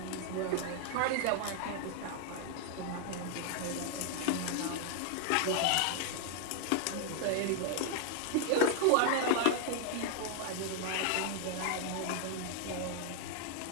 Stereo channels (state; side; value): different; both; correlation 0.00